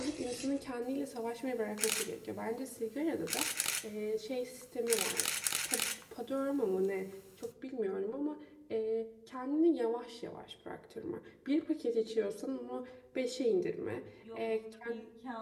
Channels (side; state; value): both; identical; correlation 1.00